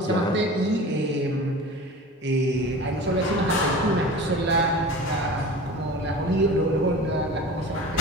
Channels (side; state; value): both; normal; correlation 0.36